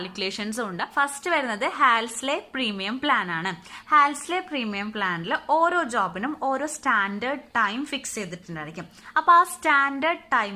ഉണ്ട്. ഫസ്റ്റ് വരുന്നത് ഹാൽസ്ലെ പ്രീമിയം പ്ലാൻ ആണ്. ഹാൽസ്ലെ പ്രീമിയം പ്ലാനിൽ ഓരോ ജോബിനും ഓരോ സ്റ്റാൻഡേർഡ് ടൈം ഫിക്സ് ചെയ്തിട്ടുണ്ടായിരിക്കും. അപ്പൊ ആ സ്റ്റാൻഡേർഡ്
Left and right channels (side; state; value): both; identical; correlation 1.00